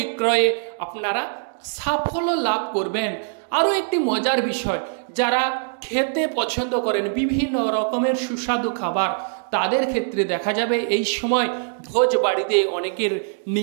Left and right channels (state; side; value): silent; left; digital silence